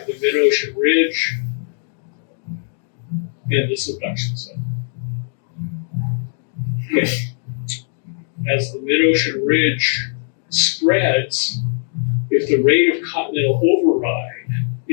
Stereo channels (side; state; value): right; silent; digital silence